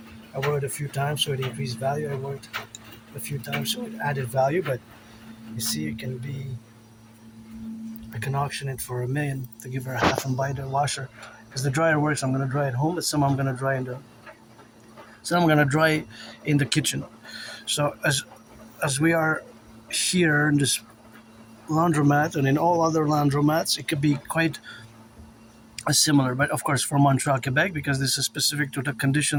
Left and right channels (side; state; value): both; identical; correlation 1.00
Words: I wore it a few times, so it increased value. I wore it a few times, so it added value. But you see, I can auction it for $1,000,000 to give her a half and buy the washer. Because the dryer works, I'm gonna dry at home, but some I'm gonna dry in the kitchen. So as we are here in this laundromat and in all other laundromats, it could be quite similar. But of course, for Montreal, Quebec, because this is specific to the